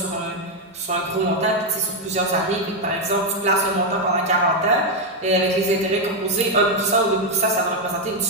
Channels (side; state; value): both; normal; correlation 0.03